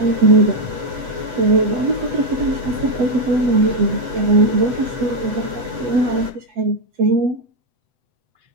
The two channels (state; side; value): late; left; 8.1 ms